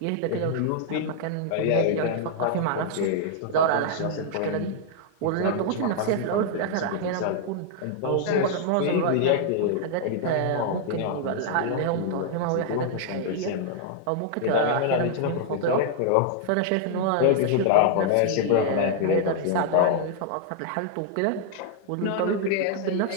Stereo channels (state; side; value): different; both; correlation -0.01